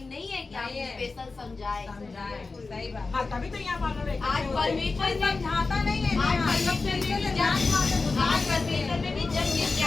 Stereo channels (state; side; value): quieter; right; 3.9 dB